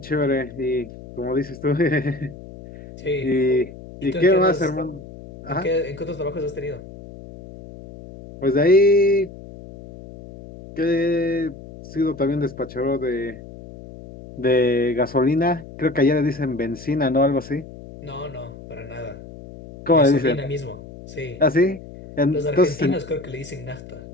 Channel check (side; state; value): left; noise; hum, 16 dB below the sound